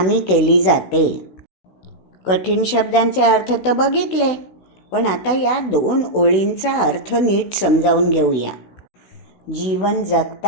केली जाते. कठीण शब्दांचे अर्थ तर बघितले, पण आता या 2 ओळींचा अर्थ नीट समजावून घेऊया. जीवन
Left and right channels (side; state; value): right; late; 16 ms